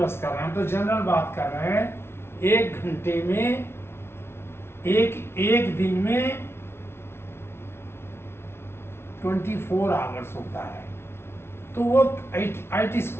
कर रहे हैं, हम तो जनरल बात कर रहे हैं। एक घंटे में, एक दिन में 24 आवर्स होता है। तो वो IT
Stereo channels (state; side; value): late; right; 0.12 ms